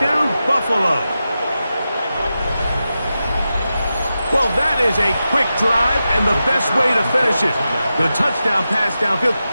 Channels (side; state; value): both; inverted; correlation -0.91